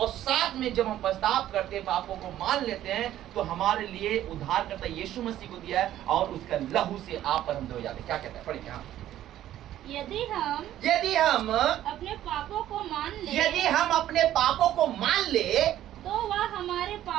साथ में जब हम पछतावा करते हैं, पापों को मान लेते हैं, तो हमारे लिए उद्धार करता यीशु मसीह को दिया है और उसका लहू से आप और हम धोए जाते हैं। क्या कहता है? पढ़ेंगे हाँ। यदि हम अपने पापों को मान ले, यदि हम अपने पापों को मान ले, तो वह हमारे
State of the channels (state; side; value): quieter; left; 12.6 dB